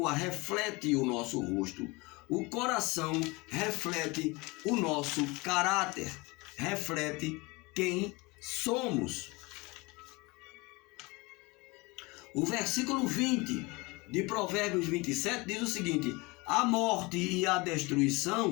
reflete o nosso rosto, o coração reflete o nosso caráter, reflete quem somos. O versículo 20 de Provérbios 27 diz o seguinte: a morte e a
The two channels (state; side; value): quieter; right; 25.0 dB